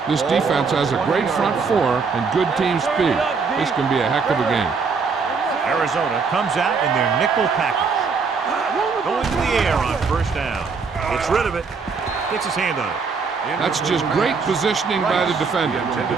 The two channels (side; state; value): left; quieter; 5.1 dB